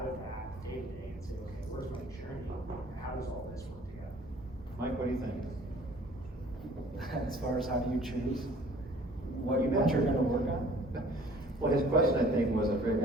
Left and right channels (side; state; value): both; normal; correlation 0.52